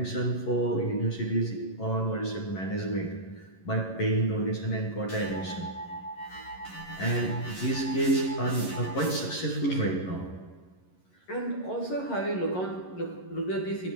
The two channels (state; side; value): late; right; 11 ms